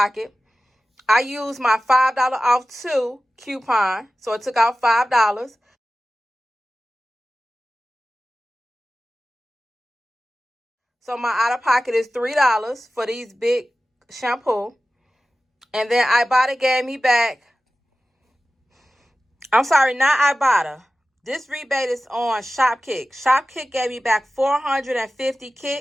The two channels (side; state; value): both; normal; correlation 0.95